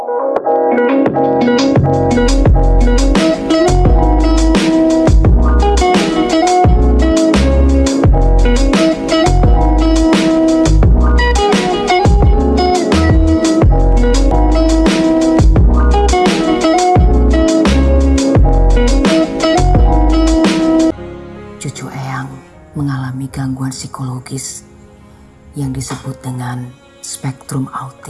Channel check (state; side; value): identical; both; correlation 1.00